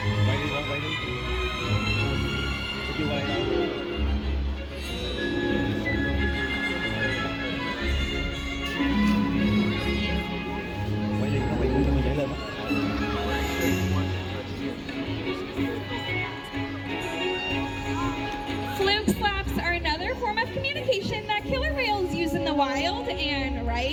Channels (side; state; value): both; identical; correlation 1.00